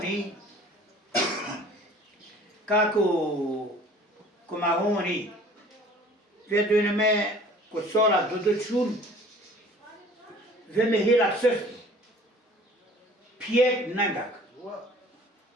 kako mahuni vedunme ko sola duduchun ve mehira sırf piyek nangak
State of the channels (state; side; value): normal; both; correlation 0.49